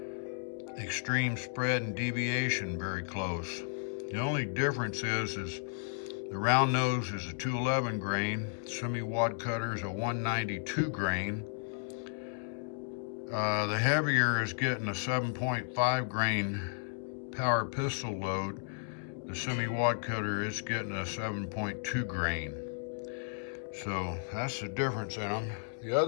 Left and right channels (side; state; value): right; silent; digital silence